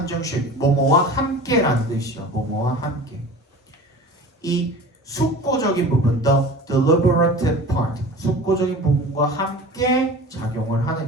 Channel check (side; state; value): both; normal; correlation 0.38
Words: 뭐뭐와 함께라는 뜻이죠. 뭐뭐와 함께. 이 숙고적인 부분, the deliberative part, 숙고적인 부분과 함께 작용을